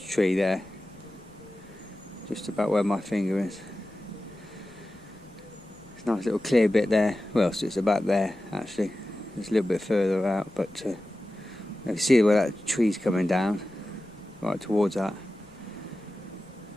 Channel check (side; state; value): left; noise; rumble, 26 dB below the sound